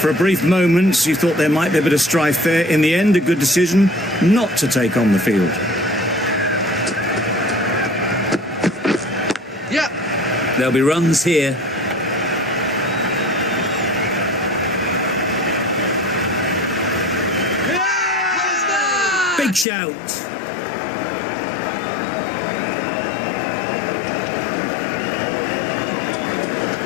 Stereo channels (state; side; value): drops out; right; at 19.7 s